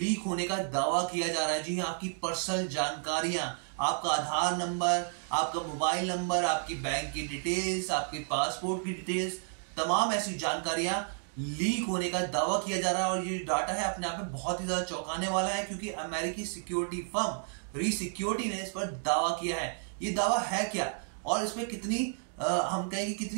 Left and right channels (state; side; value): silent; left; 55 dB below the other